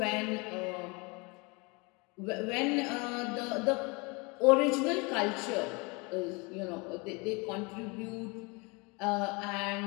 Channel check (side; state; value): right; quieter; 28.6 dB